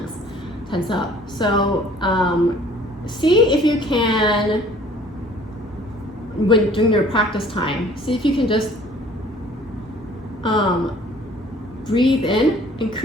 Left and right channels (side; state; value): both; normal; correlation 0.54